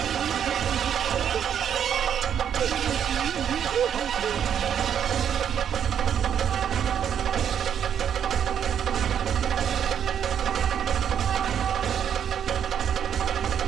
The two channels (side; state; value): left; quieter; 8.7 dB